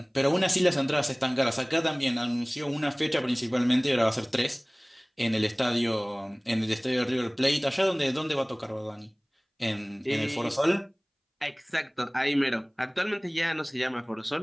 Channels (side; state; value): both; identical; correlation 1.00